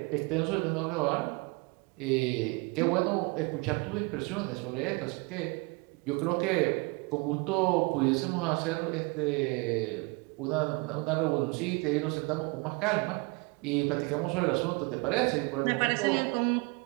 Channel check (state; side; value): quieter; left; 28.4 dB